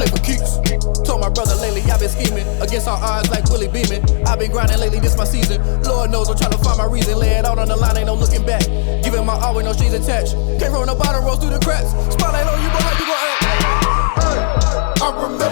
for keeps. Told my brother lately, I've been scheming against all odds like Willie Beeman. I've been grinding lately, this my season. Lord knows I'm trying to find my reason. Lay it out on the line, ain't no looking back. Giving my all with no strings attached. Came from the bottom, rose through the cracks. Spotlight on you, but how you gon' act? Hey, I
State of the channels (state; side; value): silent; right; digital silence